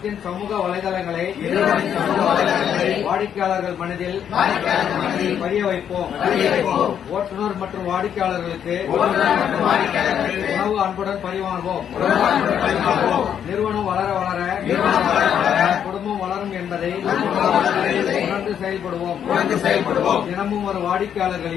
சமூக வலைதளங்களை வாடிக்கையாளர்கள் மனதில் பதிய வைப்போம். ஓட்டுநர் மற்றும் வாடிக்கையாளர்களுக்கு உணவு அன்புடன் பரிமாறுவோம். நிறுவனம் வளர வளர குடும்பம் வளரும் என்பதை உணர்ந்து செயல்படுவோம். தினமும் ஒரு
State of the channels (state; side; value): quieter; right; 8.9 dB